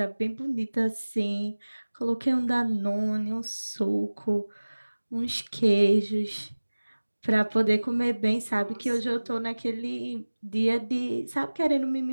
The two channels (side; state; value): both; inverted; correlation -1.00